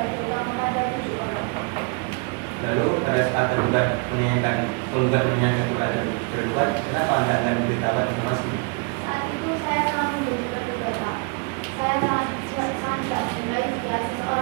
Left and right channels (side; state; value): left; quieter; 33.5 dB